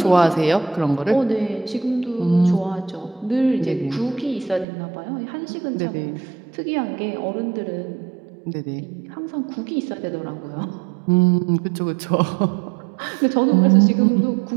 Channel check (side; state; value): left; drops out; at 4.7 s